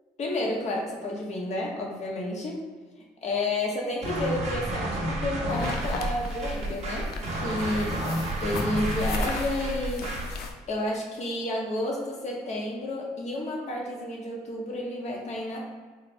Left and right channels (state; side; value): normal; both; correlation 0.58